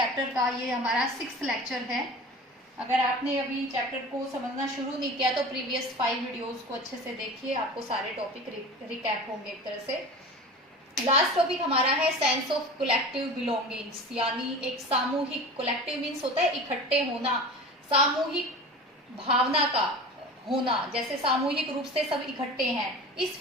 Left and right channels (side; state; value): both; normal; correlation 0.35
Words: का. ये हमारा 6th lecture है. अगर आपने अभी चैप्टर को समझना शुरू नहीं किया तो प्रीवियस 5 वीडियोस को अच्छे से देखिए, आपको सारे टॉपिक रिकैप होंगे एक तरह से. लास्ट टॉपिक हमारा है सेंस ऑफ कलेक्टिव बिलोंगिंग्स, यानी एक सामूहिक, कलेक्टिव मीन्स होता है इकट्ठे होना, सामूहिक भावना का होना, जैसे सामूहिक रूप से सब इकट्ठे हैं, इस